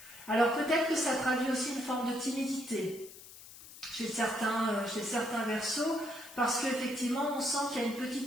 Alors peut-être que ça traduit aussi une forme de timidité chez certains Verseaux, parce qu'effectivement on sent qu'il y a une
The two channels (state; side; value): noise; left; hiss, 17 dB below the sound